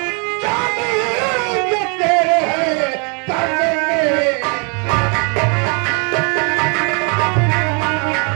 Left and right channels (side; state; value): left; quieter; 36.3 dB